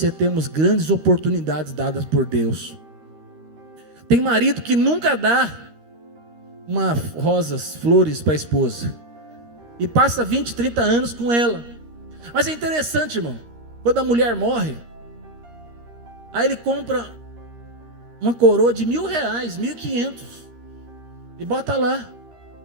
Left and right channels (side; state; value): left; late; 13 ms